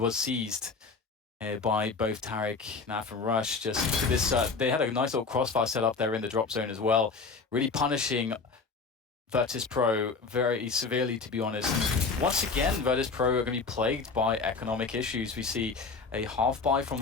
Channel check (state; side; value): quieter; right; 4.5 dB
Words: seized by both Tarek, Naf, and Rush. Just look at this. They had a nice little crossfire set up there in the drop zone as well, really punishing Virtus.pro very severely, to be honest. And once again, Virtus.pro are going to be plagued by economic issues. We see a half buy from